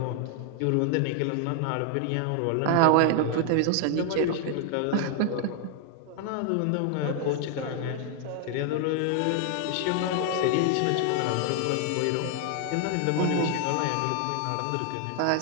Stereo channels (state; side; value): different; both; correlation 0.00